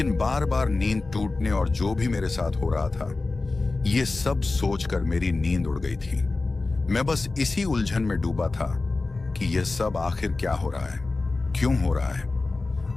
बार बार नींद टूटने और जो भी मेरे साथ हो रहा था, ये सब सोचकर मेरी नींद उड़ गई थी। मैं बस इसी उलझन में डूबा था कि यह सब आखिर क्या हो रहा है, क्यों हो रहा है।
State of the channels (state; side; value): quieter; right; 3.5 dB